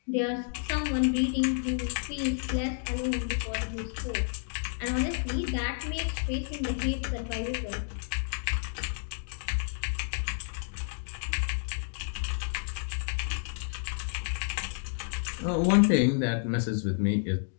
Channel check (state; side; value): silent; right; digital silence